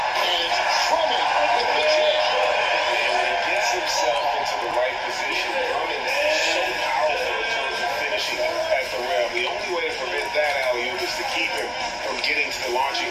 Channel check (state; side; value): identical; both; correlation 1.00